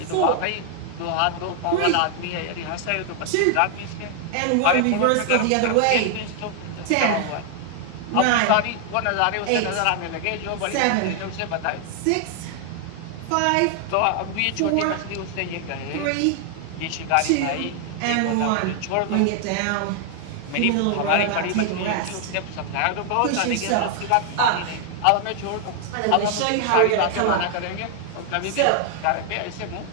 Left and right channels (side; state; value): both; different; correlation 0.00